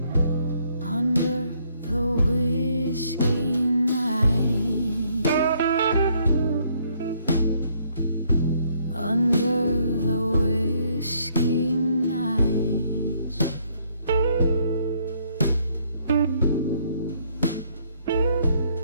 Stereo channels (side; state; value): both; inverted; correlation -0.68